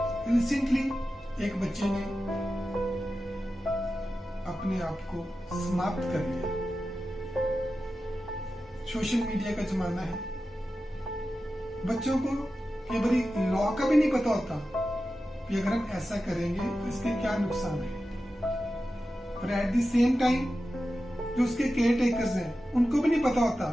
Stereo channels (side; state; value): both; normal; correlation 0.92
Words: रिसेंटली एक बच्चे ने अपने आप को समाप्त कर लिया। सोशल मीडिया का जमाना है, बच्चों को कई बारी लॉ का भी नहीं पता होता कि अगर हम ऐसा करेंगे तो इसके क्या नुकसान है। और एट द सेम टाइम जो उसके केयर टेकर्स हैं उनको भी नहीं पता होता